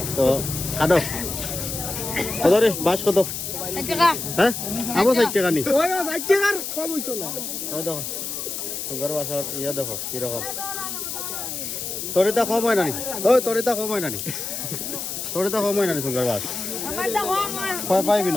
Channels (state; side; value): noise; left; hiss, 5 dB below the sound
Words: तो खादो কত রে বাস কত হ্যাঁ আবো 60 টাকা নি ওই 60 টাকার কম হইতো না ওই দেখো সুগার বাসর ইয়া দেখো কি রকম তরিতা কম হয় না নি ওই তরিতা কম হয় না নি তরিতা কম হয় না নি সুগার বাস কয় পাইবি